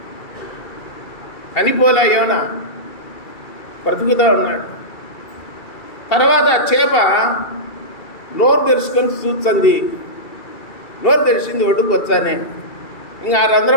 చనిపోలే యోన, బ్రతుకుతూ ఉన్నాడు. తర్వాత చేప నోరు తెరుచుకొని చూస్తుంది. నోరు తెరిచింది, ఒడ్డుకు వచ్చానే. ఇంకా ఆ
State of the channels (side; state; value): right; late; 2.3 ms